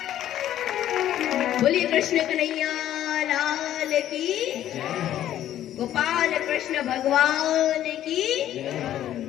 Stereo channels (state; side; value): quieter; right; 12.0 dB